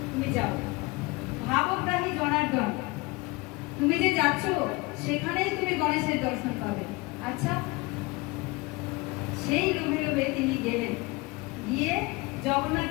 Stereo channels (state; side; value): quieter; right; 23.9 dB